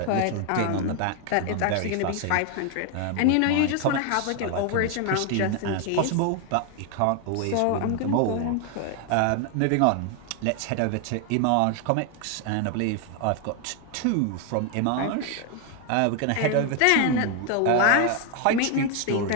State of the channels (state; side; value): different; both; correlation 0.01